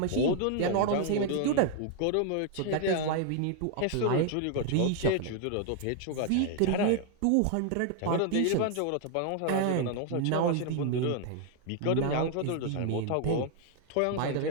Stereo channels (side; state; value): both; different; correlation 0.00